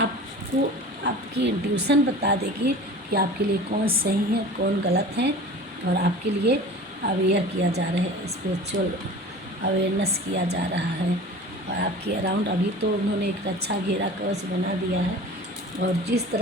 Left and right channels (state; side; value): normal; both; correlation 0.39